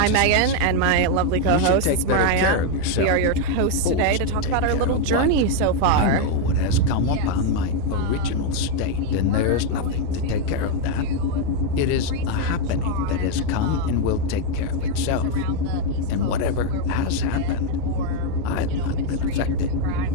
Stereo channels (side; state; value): both; different; correlation 0.01